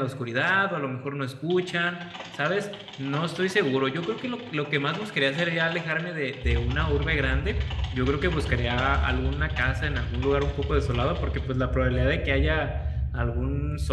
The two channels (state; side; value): identical; both; correlation 1.00